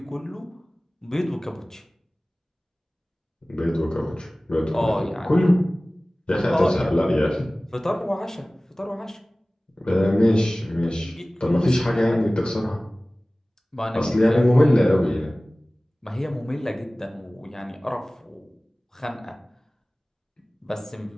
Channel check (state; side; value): normal; both; correlation 0.98